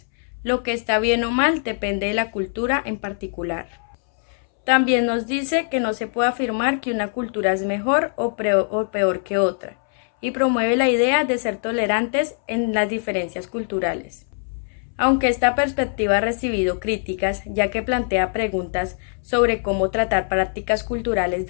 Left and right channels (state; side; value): silent; right; 63 dB below the other